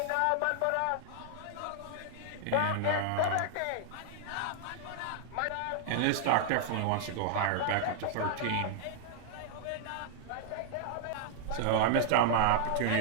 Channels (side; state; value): both; different; correlation -0.01